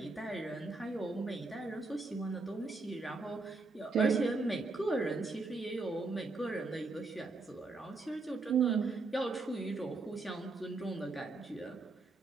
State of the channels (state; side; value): quieter; left; 3.6 dB